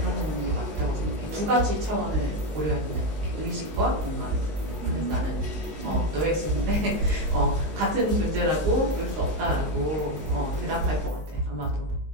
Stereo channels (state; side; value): late; left; 19 ms